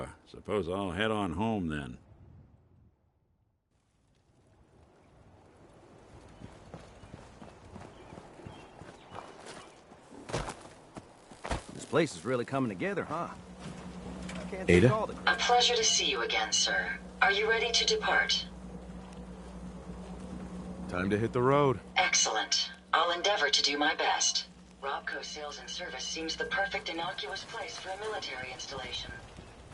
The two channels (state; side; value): identical; both; correlation 1.00